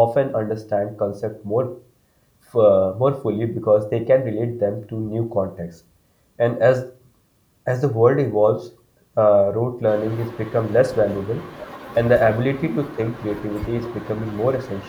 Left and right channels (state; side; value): identical; both; correlation 1.00